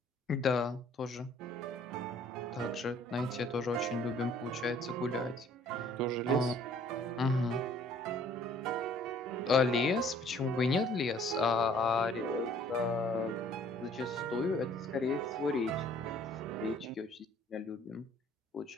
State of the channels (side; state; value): both; normal; correlation 0.57